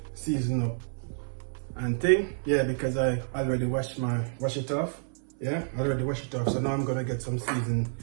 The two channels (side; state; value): left; silent; 58 dB below the other